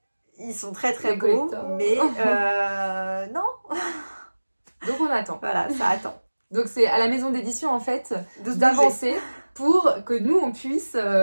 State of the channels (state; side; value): inverted; both; correlation -1.00